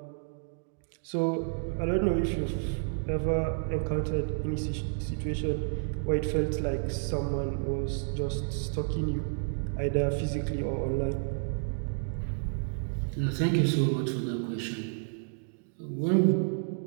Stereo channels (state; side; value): silent; left; digital silence